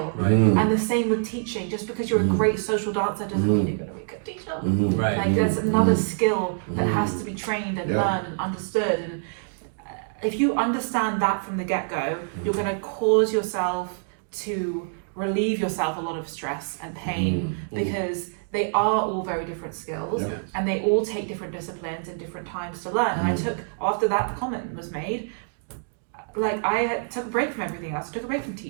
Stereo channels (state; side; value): silent; left; digital silence